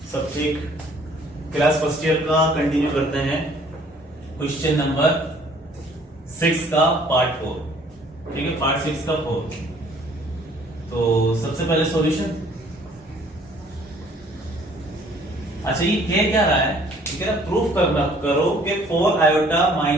सब ठीक? क्लास फर्स्ट ईयर का कंटिन्यू करते हैं। क्वेश्चन नंबर 6 का पार्ट 4। ठीक है, पार्ट 6 का 4। तो सबसे पहले सॉल्यूशन। अच्छा, ये क्या रहा है? ये कह रहा प्रूफ करना करो कि 4 आयोटा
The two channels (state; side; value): normal; both; correlation 0.57